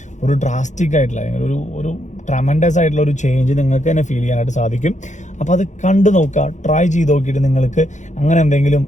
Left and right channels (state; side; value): late; right; 0.35 ms